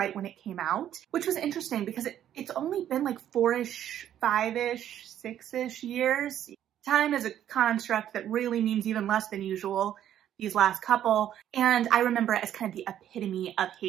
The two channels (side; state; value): left; quieter; 10.9 dB